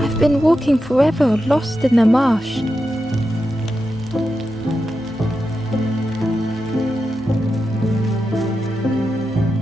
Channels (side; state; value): left; noise; hum, 29 dB below the sound